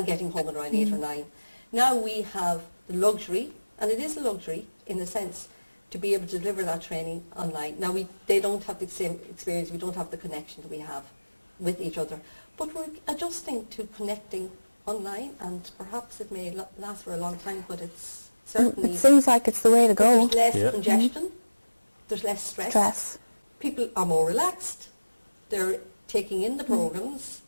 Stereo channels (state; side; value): inverted; both; correlation -1.00